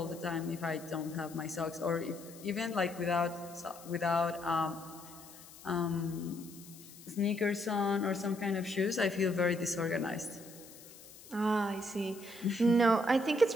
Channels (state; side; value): noise; left; hiss, 19 dB below the sound